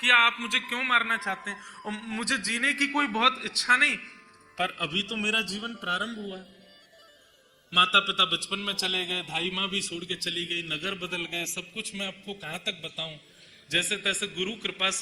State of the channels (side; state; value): both; identical; correlation 1.00